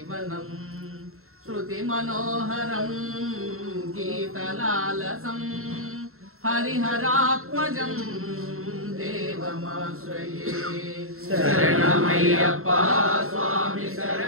శృతిమనోహరం గీతలాలసం హరిహరాత్మజం దేవమాశ్రయే. శరణమయ్యప్ప స్వామి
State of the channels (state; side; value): late; left; 0.62 ms